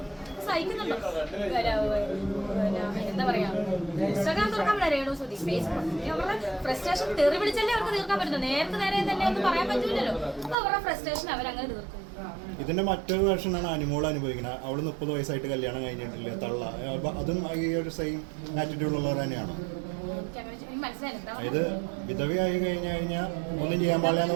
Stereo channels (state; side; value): drops out; left; at 10.6 s